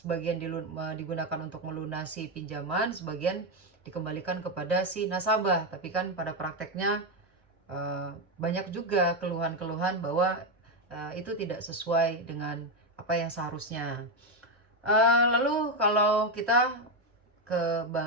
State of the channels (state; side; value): normal; both; correlation 0.08